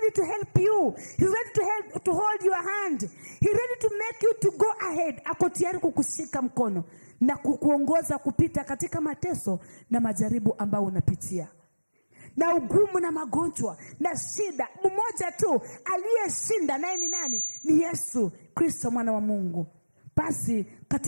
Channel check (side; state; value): both; inverted; correlation -1.00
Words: to help you. He's ready to hold your hand. He's ready to make you to go ahead. Ako tayari kukushika mkono na kukuongoza kupita katika mateso na majaribu ambayo unapitia, na ugumu na magonjwa na shida. Mmoja tu aliyeshinda, naye ni nani? Ni Yesu Kristo, mwana wa Mungu. Basi